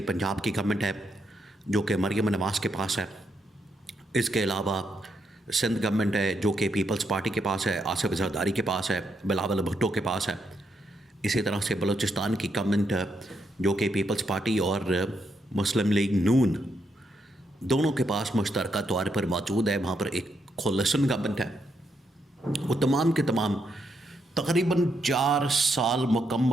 پنجاب کی گورنمنٹ ہے جو کہ مریم نواز کے پاس ہے، اس کے علاوہ سندھ گورنمنٹ ہے جو کہ پیپلز پارٹی کے پاس ہے، آصف زرداری کے پاس ہے، بلاول بھٹو کے پاس ہے، اسی طرح سے بلوچستان کی گورنمنٹ جو کہ پیپلز پارٹی اور مسلم لیگ نون دونوں کے پاس مشترکہ طور پر موجود ہے، وہاں پر ایک کولیشن گورنمنٹ ہے۔ وہ تمام کے تمام تقریباً 4 سال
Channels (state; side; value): normal; both; correlation 0.79